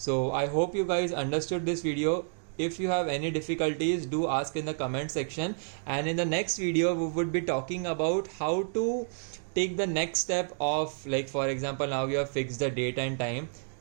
I hope you guys understood this video. If you have any difficulties, do ask in the comment section, and in the next video we would be talking about how to take the next step of, like for example, now you have fixed the date and time.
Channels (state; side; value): silent; left; digital silence